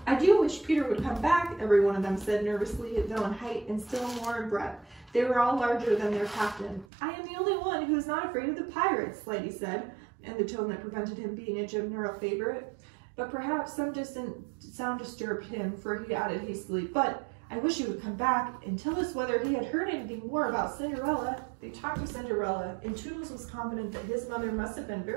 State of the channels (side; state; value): left; drops out; at 6.9 s